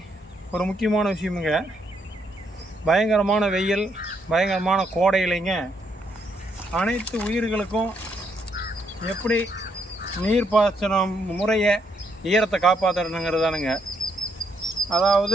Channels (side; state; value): both; normal; correlation 0.75